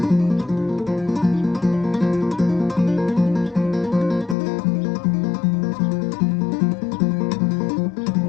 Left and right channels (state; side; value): drops out; right; at 4.4 s